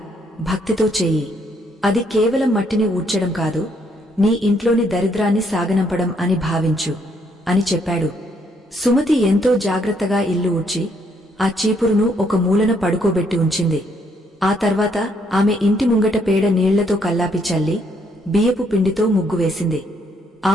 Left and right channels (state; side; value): normal; both; correlation 0.71